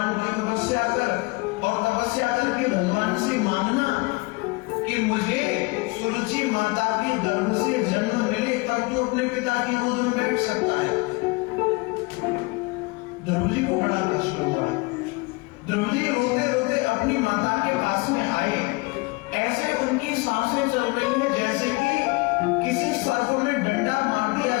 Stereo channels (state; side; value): quieter; right; 26.1 dB